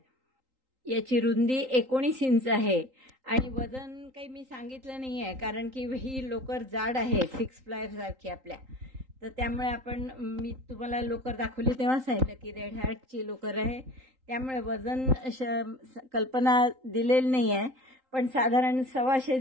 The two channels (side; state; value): left; late; 3.8 ms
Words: याची रुंदी 19 इंच आहे आणि वजन काही मी सांगितलं नाही आहे, कारण की ही लोकर जाड आहे, 6 प्लायर सारखी आपल्या. तर त्यामुळे मी तुम्हाला लोकर दाखवली तेव्हा सांगितलं की रेड हॅटची लोकर आहे, त्यामुळे वजन कल्पना दिलेली नाही आहे, पण साधारण